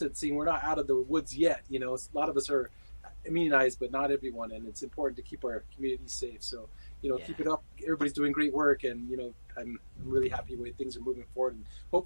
We're not out of the woods yet. A lot of us are immunized, but not everyone, and it's important to keep our community safe. So, keep it up. Everybody's doing great work, and I'm really happy the way things are moving forward, and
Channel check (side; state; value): both; inverted; correlation -1.00